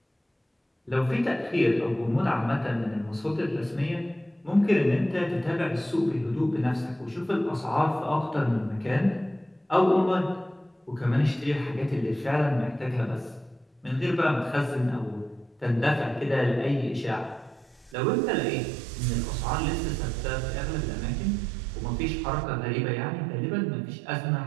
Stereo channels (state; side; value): drops out; left; at 17.9 s